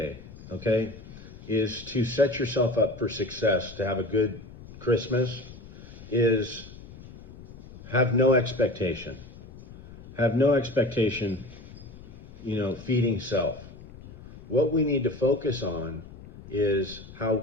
okay, is to set yourself up for success, to have a good Christmas, is have no expectation. Have no expectation, feeding self. What we need to focus on is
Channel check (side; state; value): left; noise; rumble, 17 dB below the sound